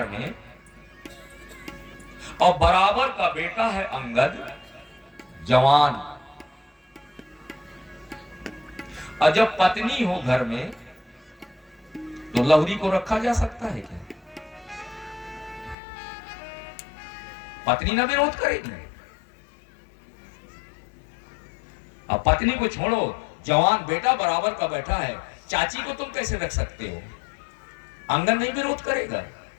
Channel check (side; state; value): right; drops out; at 15.8 s